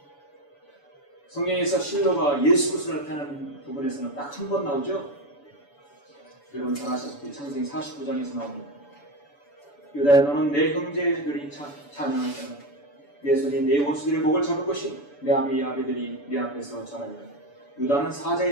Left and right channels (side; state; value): right; late; 7.0 ms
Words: 성경에서 실로가 예수 그리스도를 나타내는 부분에서는 딱 한 번 나오죠. 여러분 잘 아시다시피 창세기 49장에서 나옵니다. 유다야 너는 내 형제들이 찬양할 때는 내 손이 내 원수들의 목을 잡을 것이요 내 아비의 아비들이 내 앞에서 자라리라. 유다는